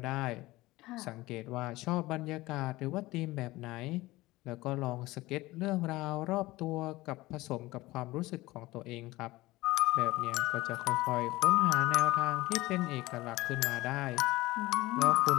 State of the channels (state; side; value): quieter; right; 19.2 dB